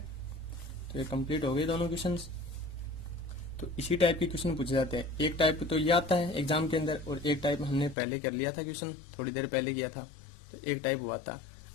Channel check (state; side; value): drops out; right; at 8.0 s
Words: तो ये कंप्लीट हो गए दोनों क्वेश्चंस। तो इसी टाइप के क्वेश्चन पूछे जाते हैं। एक टाइप तो ये आता है एग्जाम के अंदर, और एक टाइप हमने पहले कर लिया था क्वेश्चन, थोड़ी देर पहले किया था, तो एक टाइप हुआ था।